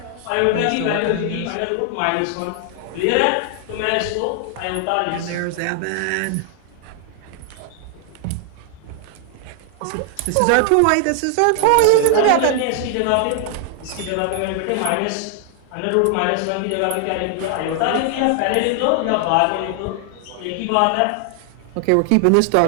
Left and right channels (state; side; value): different; both; correlation 0.00